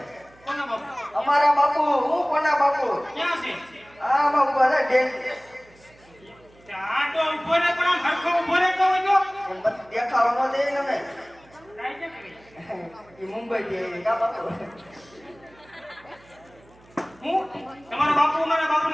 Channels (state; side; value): noise; right; hum, 28 dB below the sound